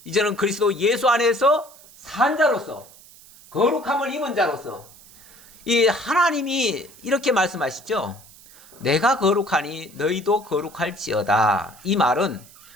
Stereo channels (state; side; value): noise; right; hiss, 23 dB below the sound